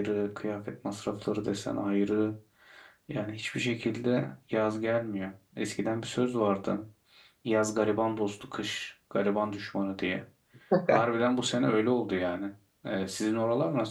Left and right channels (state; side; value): identical; both; correlation 1.00